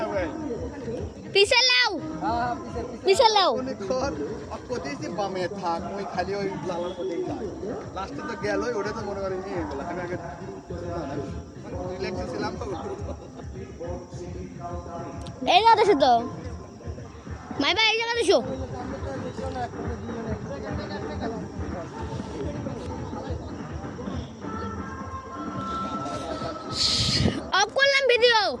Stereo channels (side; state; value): both; identical; correlation 1.00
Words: ভাই পিছে লাও হ্যাঁ পিছে লাও মনে কর কোথায় বামে থাক ওই খালি ওই লালার মধ্যেই যায় লাস্টে তো গেল ওটা তো মনে করি নিয়ে গেল আমি আগে রিল্যাক্সে ছিলাম তো এই জায়গা দেখো তো মাই ভাই এই জায়গা দেখো অফ করলাম ভিডিও